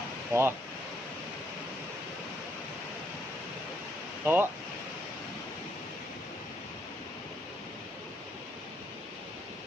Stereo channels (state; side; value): normal; both; correlation 0.72